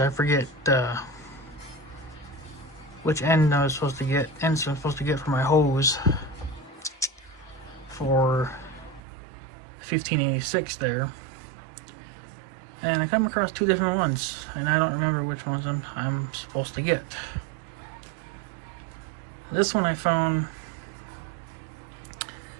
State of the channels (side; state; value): left; drops out; at 9.0 s